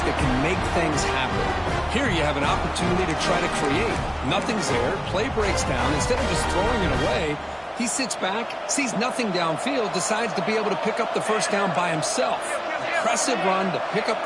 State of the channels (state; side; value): identical; both; correlation 1.00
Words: that can make things happen. Here you have an opportunity to try to create. Nothing's there. Play breaks down. Instead of just throwing it away, he sits back, sees nothing downfield, decides to be able to pick up the first down by himself. Impressive run to pick up